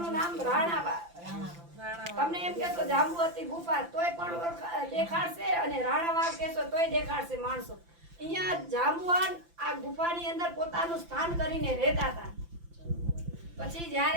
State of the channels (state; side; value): late; left; 5.9 ms